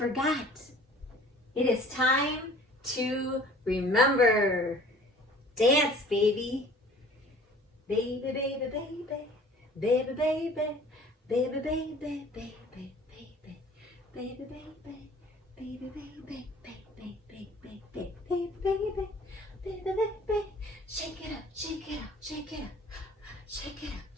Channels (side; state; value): both; normal; correlation 0.49